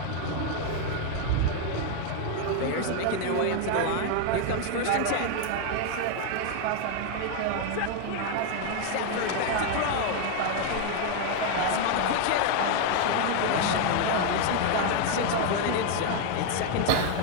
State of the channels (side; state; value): both; different; correlation 0.01